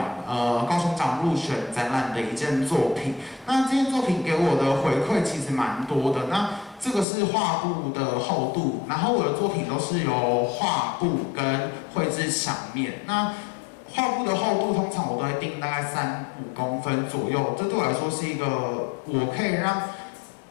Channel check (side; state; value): right; drops out; at 7.1 s